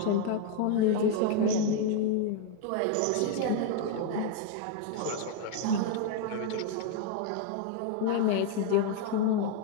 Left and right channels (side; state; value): both; different; correlation 0.00